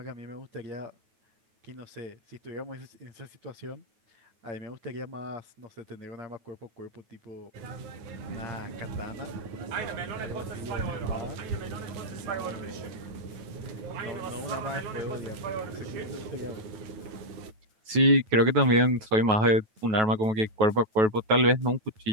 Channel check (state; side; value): late; left; 9.3 ms